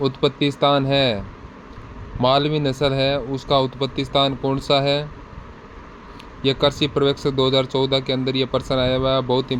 उत्पत्ति स्थान है। मालवी नस्ल है उसका उत्पत्ति स्थान कौन सा है? यह कृषि पर्यवेक्षक 2014 के अंदर ये पर्सन आया हुआ है। बहुत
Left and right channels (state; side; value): identical; both; correlation 1.00